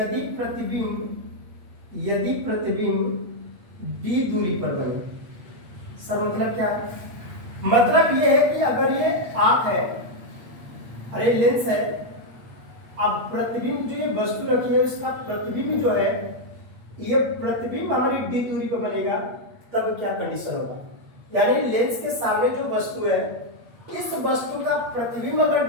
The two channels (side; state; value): left; late; 8.4 ms